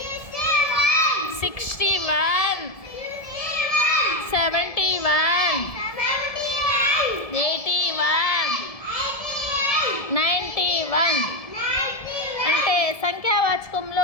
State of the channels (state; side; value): late; right; 1.7 ms